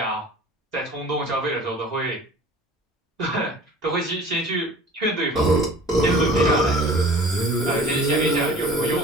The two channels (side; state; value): both; normal; correlation 0.45